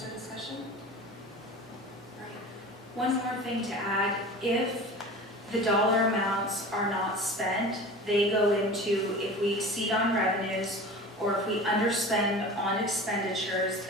or discussion? One more thing to add, if the dollar amounts are not spent, they go into, if we exceed on revenues or if we underspend on expenditures,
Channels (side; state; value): both; normal; correlation 0.36